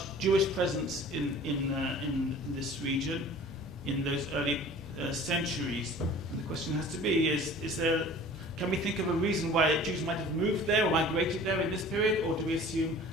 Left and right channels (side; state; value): both; normal; correlation 0.45